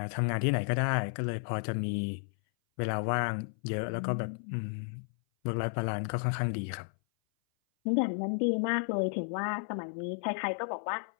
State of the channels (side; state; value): right; silent; 56 dB below the other